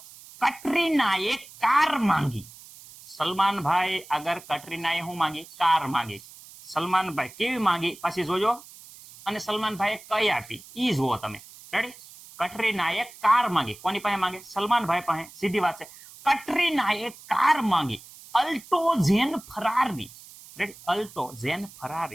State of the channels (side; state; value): right; noise; hiss, 19 dB below the sound